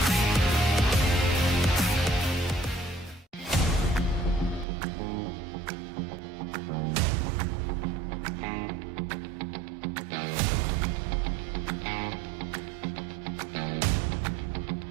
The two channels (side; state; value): left; drops out; at 4.7 s